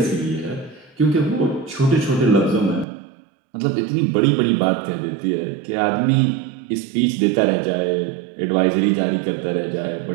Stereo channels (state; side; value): drops out; left; at 2.9 s